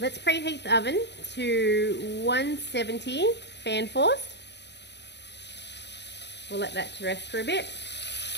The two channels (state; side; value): late; right; 0.50 ms